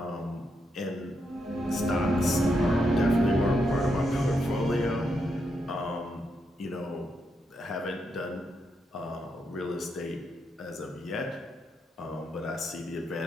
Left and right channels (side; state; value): both; normal; correlation 0.82